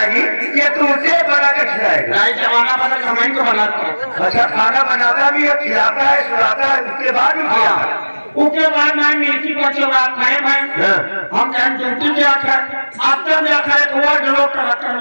या तू उसे बना कर खिलाएगा? नहीं, जमाना बदल कमाई को बनाता है। अच्छा, खाना बनाता भी है, खिलाता है, सुलाता है, उसके बाद भी खिलाता है। उसके बाद मैं मिर्ची का चौरा खाए भाई, हम कहें ड्यूटी क्या खाए, आप तो क्या खाए, वो लोग टमाटर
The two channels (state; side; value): inverted; both; correlation -1.00